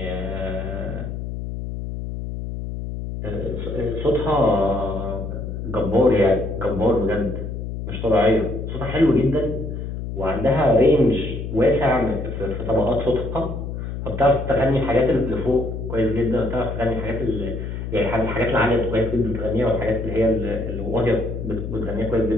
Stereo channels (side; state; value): left; noise; hum, 6 dB below the sound